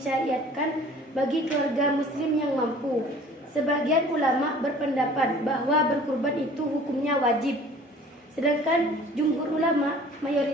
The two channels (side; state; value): both; normal; correlation 0.49